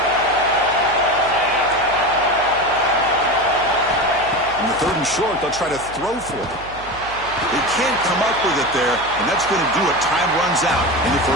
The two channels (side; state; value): right; noise; hum, 17 dB below the sound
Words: On the third and short, they'll try to throw for it. They can't come up with it there, and that's going to do it. Time runs out in the